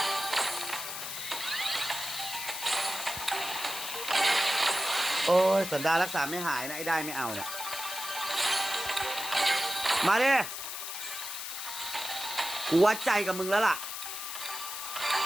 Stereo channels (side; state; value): left; noise; hiss, 6 dB below the sound